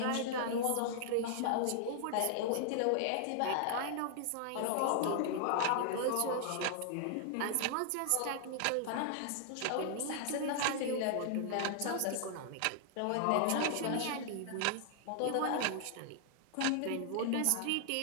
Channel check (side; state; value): both; different; correlation 0.00